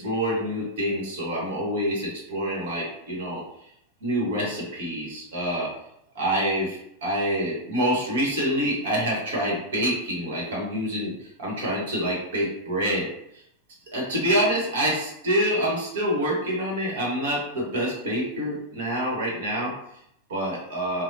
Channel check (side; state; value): both; normal; correlation -0.11